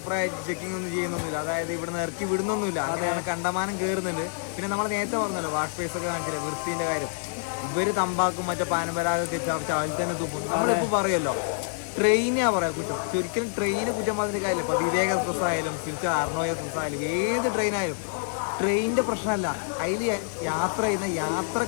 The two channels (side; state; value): right; silent; digital silence